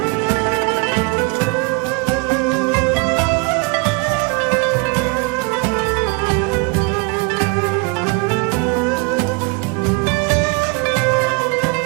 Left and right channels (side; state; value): left; quieter; 28.1 dB